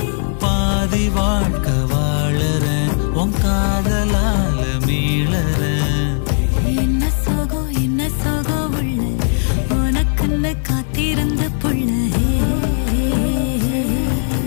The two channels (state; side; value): silent; right; 58 dB below the other